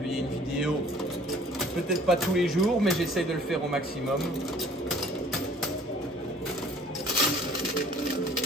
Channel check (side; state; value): both; normal; correlation 0.53